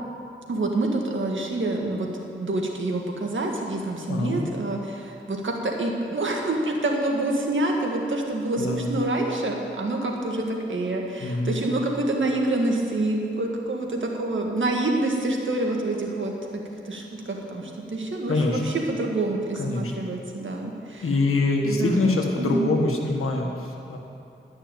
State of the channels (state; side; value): normal; both; correlation 0.57